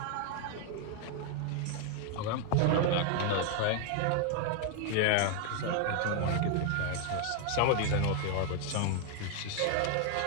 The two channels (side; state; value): both; different; correlation 0.01